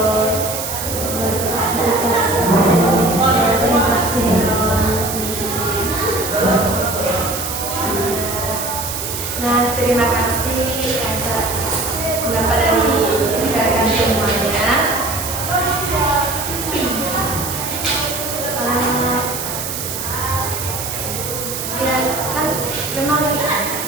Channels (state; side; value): noise; right; hiss, 5 dB below the sound